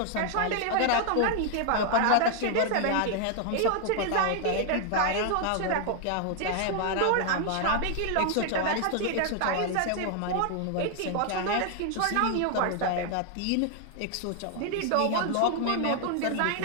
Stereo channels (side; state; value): both; different; correlation 0.00